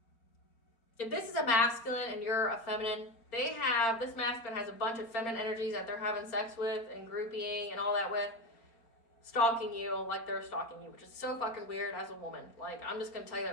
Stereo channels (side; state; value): right; late; 4.4 ms